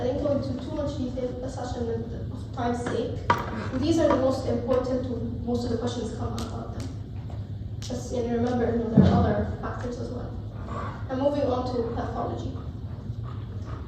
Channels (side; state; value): both; identical; correlation 1.00